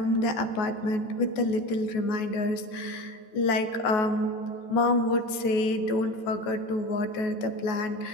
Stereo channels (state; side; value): late; right; 13 ms